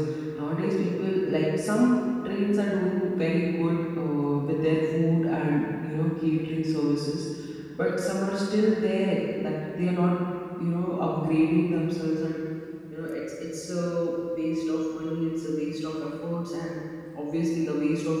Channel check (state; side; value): identical; both; correlation 1.00